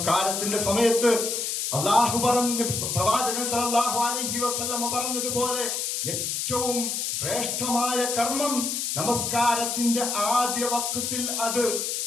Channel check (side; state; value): left; noise; hiss, 1 dB below the sound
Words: സമയത്ത് അള്ളാഹു പറഞ്ഞു, പ്രവാചകൻ സല്ലല്ലാഹു അലൈഹി വസല്ലമ പറഞ്ഞതുപോലെ ഏറ്റവും ശ്രേഷ്ഠമായ കർമ്മം നമസ്കാരത്തിന്റെ ആദ്യ വഖത്തിൽ അത്